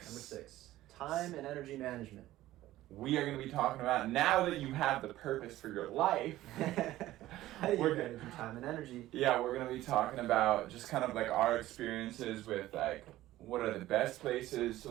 Number 6. Time and energy management. We are going to be talking about, now that you have the purpose for your life. How do you manage your time and energy? Yeah, we're going to be talking about just kind of like our experiences with like, what are the best places to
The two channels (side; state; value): left; quieter; 15.4 dB